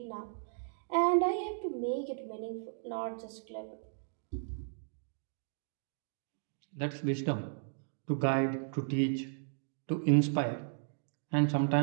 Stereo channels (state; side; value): silent; left; digital silence